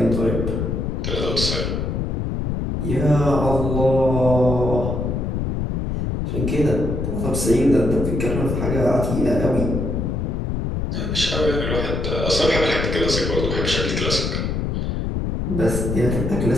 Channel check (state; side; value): noise; left; rumble, 1 dB below the sound